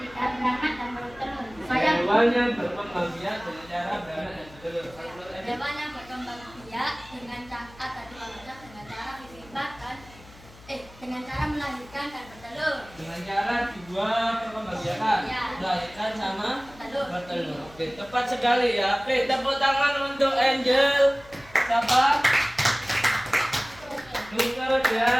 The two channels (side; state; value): left; noise; hum, 22 dB below the sound